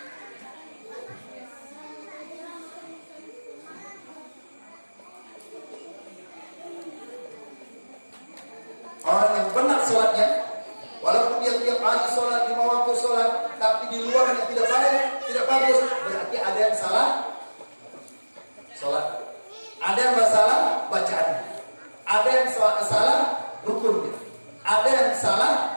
Orang yang benar sholatnya, walaupun dia tiap hari sholat, 5 waktu sholat, tapi di luarnya tidak baik, tidak bagus, berarti ada yang salah sholat. Ada yang salah bacaannya. Ada yang salah rukunnya. Ada yang salah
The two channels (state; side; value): inverted; both; correlation -1.00